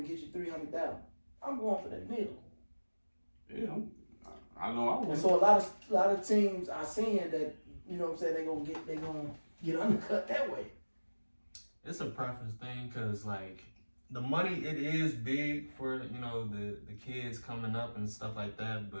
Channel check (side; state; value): both; inverted; correlation -1.00